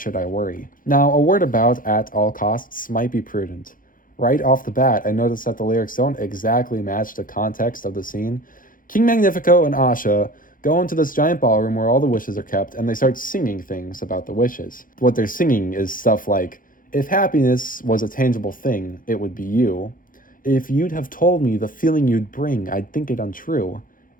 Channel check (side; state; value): right; late; 0.40 ms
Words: I Worry. Now, a word about At All Costs might be prudent. Right off the bat, I noticed that the lyrics don't exactly match the context of the scene. King Magnifico and Asha go into this giant ballroom where all the wishes are kept, and they start singing things about the wishes. What they're singing is stuff like, if happiness was a tangible thing, it would be you. If you'd have told me the feeling you'd bring, I'd think it untrue.